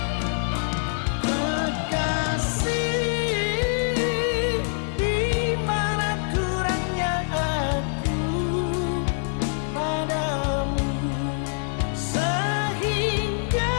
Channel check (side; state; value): right; silent; digital silence